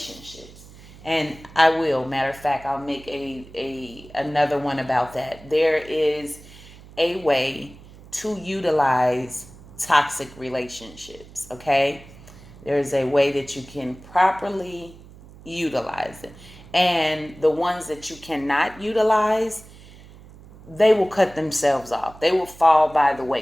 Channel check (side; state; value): right; noise; hum, 20 dB below the sound